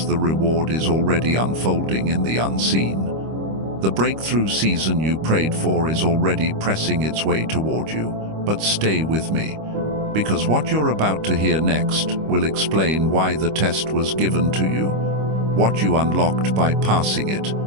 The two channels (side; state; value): left; late; 25 ms